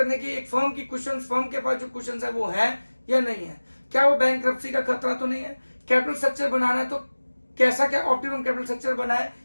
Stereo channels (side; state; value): both; inverted; correlation -1.00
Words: की एक फर्म की क्वेश्चन, फर्म के पास जो क्वेश्चन है वो है या नहीं है, क्या वो बैंकरप्सी का खतरा तो नहीं है, कैपिटल स्ट्रक्चर बनाना है तो कैसा क्या ऑप्टिमम कैपिटल स्ट्रक्चर बनाए।